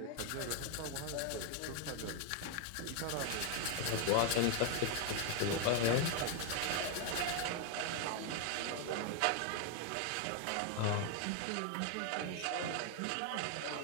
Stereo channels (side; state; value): both; different; correlation 0.01